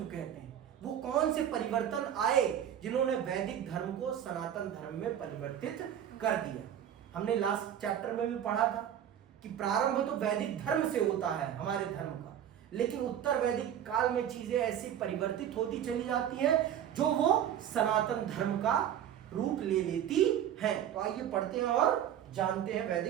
कहते हैं? वो कौन से परिवर्तन आए जिन्होंने वैदिक धर्म को सनातन धर्म में परिवर्तित कर दिया। हमने लास्ट चैप्टर में भी पढ़ा था कि प्रारंभ तो वैदिक धर्म से होता है हमारे धर्म का, लेकिन उत्तर वैदिक काल में चीजें ऐसी परिवर्तित होती चली जाती हैं जो वो सनातन धर्म का रूप ले लेती हैं। तो आइए पढ़ते हैं और जानते हैं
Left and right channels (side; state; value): left; quieter; 10.1 dB